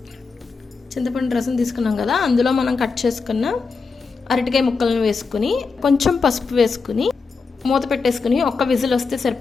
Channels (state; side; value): quieter; right; 4.7 dB